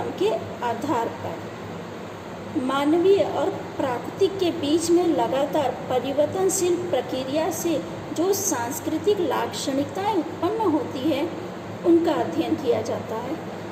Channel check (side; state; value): both; identical; correlation 1.00